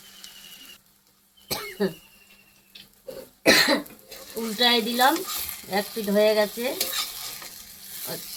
উল্টায় দিলাম, এক পিঠ হয়ে গেছে।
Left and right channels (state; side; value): identical; both; correlation 1.00